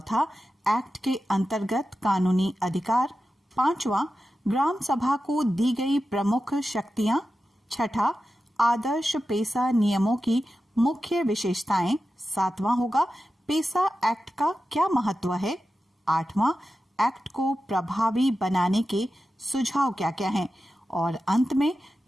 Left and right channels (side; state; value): both; normal; correlation 0.92